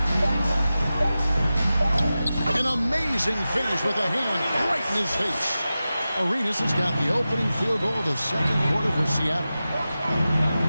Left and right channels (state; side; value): inverted; both; correlation -0.94